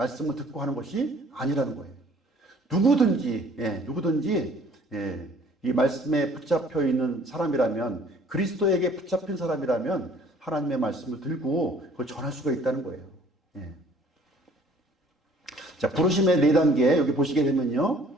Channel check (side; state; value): both; normal; correlation 0.56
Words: 듣고 하는 것이 아니라는 거예요. 누구든지 이 말씀에 붙잡혀 있는 사람이라면, 그리스도에게 붙잡힌 사람이라면 하나님의 말씀을 들고 그걸 전할 수가 있다는 거예요. 자, 부르심의 4단계 여기 보시게 되면요.